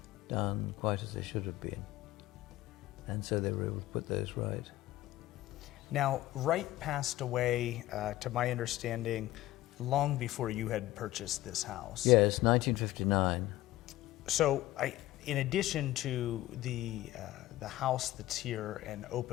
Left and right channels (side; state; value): right; quieter; 15.9 dB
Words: done quite as they should have been. And so they were able to put those right. Now, Wright passed away, to my understanding, long before you had purchased this house. Yes, 1959. So, in addition to the house that's here and